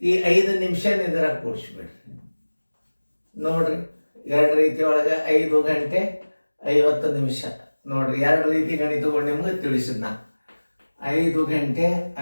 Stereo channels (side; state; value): both; inverted; correlation -1.00